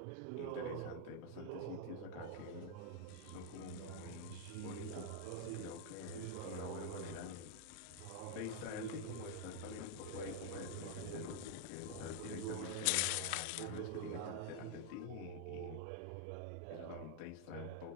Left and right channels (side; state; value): both; different; correlation 0.00